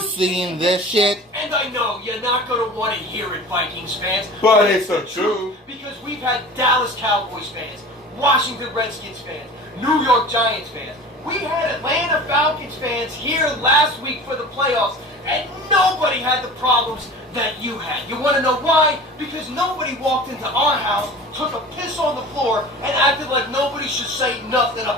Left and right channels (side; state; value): both; normal; correlation 0.37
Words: this shit? and I know you're not going to want to hear it, Vikings fans. But it's the truth. Because we've had Dallas Cowboys fans, Washington Redskins fans, New York Giants fans. We had Atlanta Falcons fans here last week for the playoffs, and nobody had the problems that you had. You want to know why? Because nobody walked into our house, took a piss on the floor, and acted like nobody should say nothing